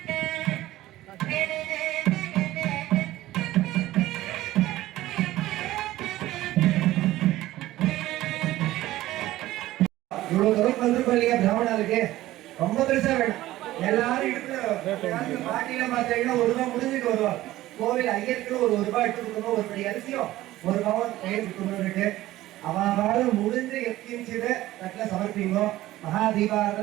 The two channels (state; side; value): quieter; left; 15.8 dB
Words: இவ்வளவு தூரம் வந்திருக்கோம் இல்லையா பிராமணாளுக்கு, ரொம்ப பெருசா வேணும். எல்லாரும் எடுத்து பாட்டியில பார்த்தீங்கன்னா 1 ரூபாய் முடிஞ்சுட்டு வருவோம். கோவில் ஐயருக்கு ஒரு ரூபாய் எடுத்து கொடுக்கணும், ஒரு படி அரிசியும் 1 பவுன் பெயர் கொடுக்கணும்னுட்டு அவாறு முடிஞ்சு எத்திச்சது தட்டில் சமர்ப்பிங்கோ. மகா